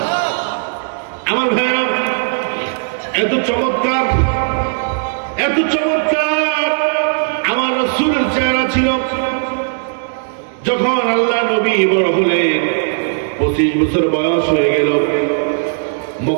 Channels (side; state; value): left; silent; digital silence